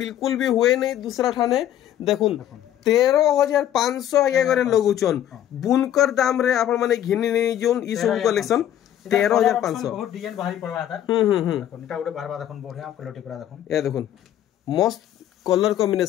बिल्कुल भी हुए नहीं दूसरा ठाने देखुन 13500 आगे करे लगुचन बुनकर दाम रे आपण माने घिनी नहीं जोन ई सब कलेक्शन 13500 बहुत डिजाइन भारी पड़वा था। देखुन इटा उडे बारबा देखुन बढ़िया क्वालिटी पूरा देखुन ए देखुन मस्त कलर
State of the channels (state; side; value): quieter; right; 11.3 dB